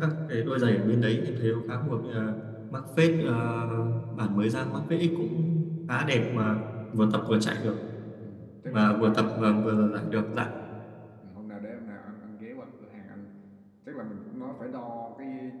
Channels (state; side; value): identical; both; correlation 1.00